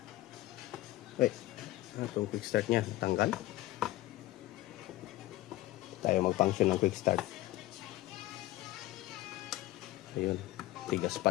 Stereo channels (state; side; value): quieter; right; 16.8 dB